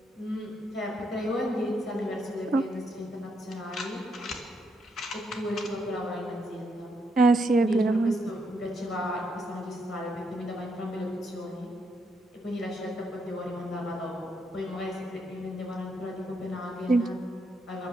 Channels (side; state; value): both; normal; correlation 0.77